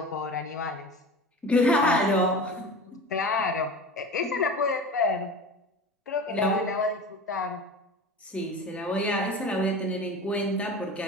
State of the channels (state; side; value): normal; both; correlation 0.34